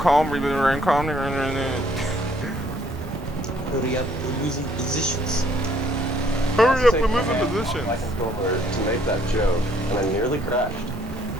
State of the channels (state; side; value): normal; both; correlation 0.64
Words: calm, re-generating calm. Hurry up, we're losing positions. Hurry up, we're Take my losing hand off positions. my controller to make that joke, and I nearly crashed.